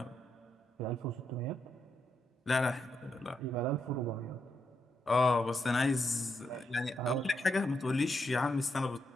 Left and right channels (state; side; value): normal; both; correlation 0.81